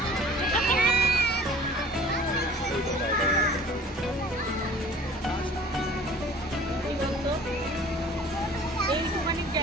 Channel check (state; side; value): normal; both; correlation 0.48